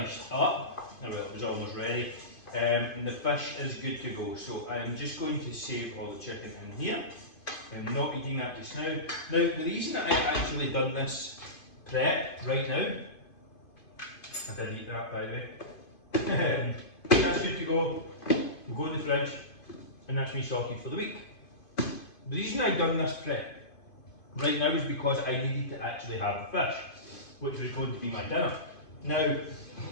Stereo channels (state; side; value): late; right; 2.5 ms